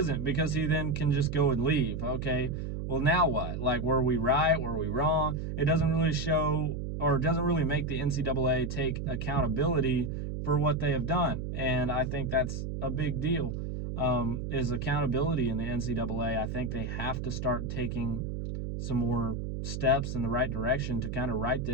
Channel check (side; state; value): right; noise; hum, 4 dB below the sound